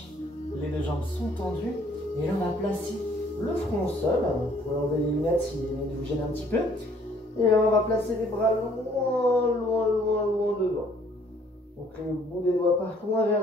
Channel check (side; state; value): both; normal; correlation 0.61